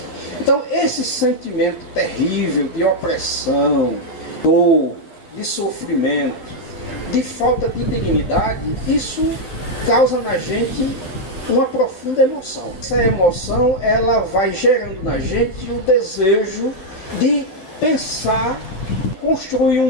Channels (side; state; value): right; late; 11 ms